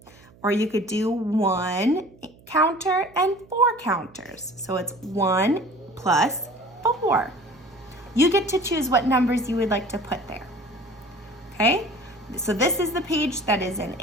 Or you could do 1 counter and 4 counters. So it's 1 plus 4. You get to choose what numbers you would like to put there. Okay? So this is the page that is an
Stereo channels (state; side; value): noise; right; hum, 26 dB below the sound